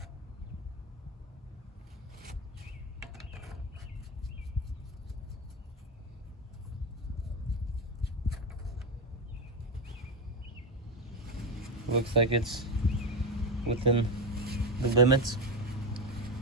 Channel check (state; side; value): normal; both; correlation 0.14